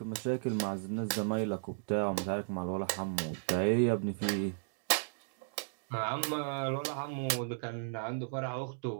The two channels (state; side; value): silent; left; digital silence